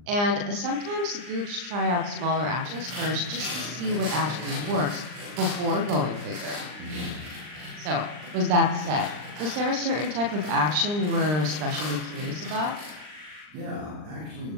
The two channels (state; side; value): late; left; 39 ms